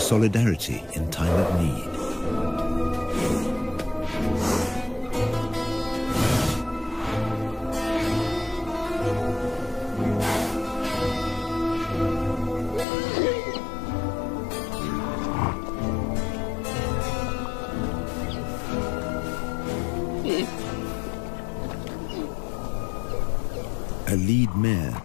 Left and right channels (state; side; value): drops out; right; at 12.9 s